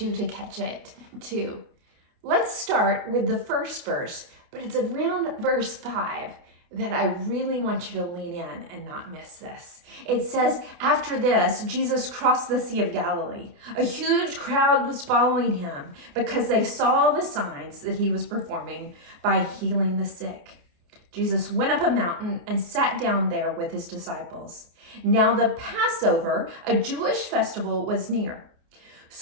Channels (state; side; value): late; left; 28 ms